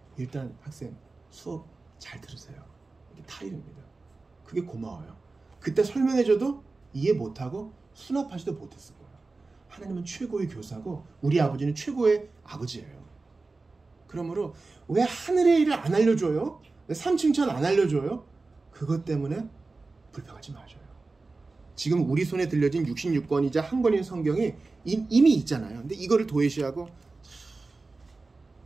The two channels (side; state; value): left; quieter; 3.7 dB